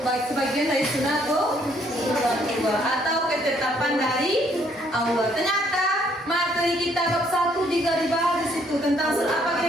Baik, sebagian dari sunatullah atau ketetapan dari Allah. Ternyata materi kita bab 1 juga dibahas di situ tentang surah apa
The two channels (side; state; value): both; normal; correlation 0.66